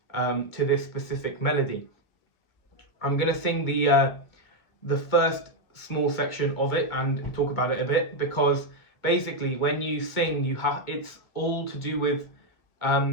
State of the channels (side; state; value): right; late; 2.2 ms